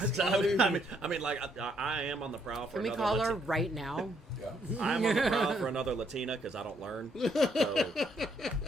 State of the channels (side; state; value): both; normal; correlation 0.71